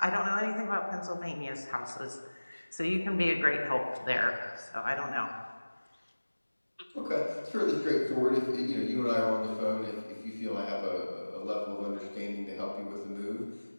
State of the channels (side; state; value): both; inverted; correlation -1.00